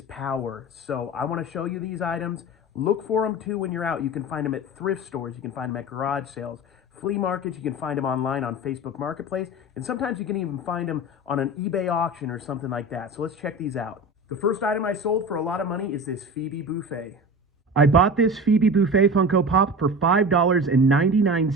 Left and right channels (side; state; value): both; normal; correlation 0.32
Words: power, so I want to show you these items. Look for them too when you're out. You can find them at thrift stores, you can find them at garage sales, flea markets, you can find them online on Facebook Marketplace, and sometimes you can even find them on an eBay auction or something like that. So let's check these out. The first item I sold for a lot of money is this Phoebe Buffet. I bought this Phoebe Buffet Funko Pop for